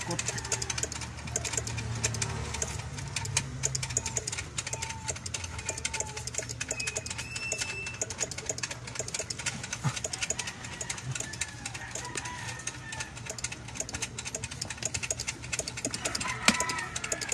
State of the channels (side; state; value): both; identical; correlation 1.00